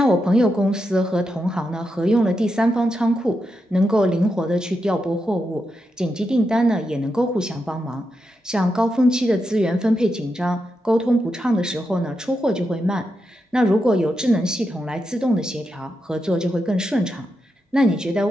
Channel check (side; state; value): both; normal; correlation 0.86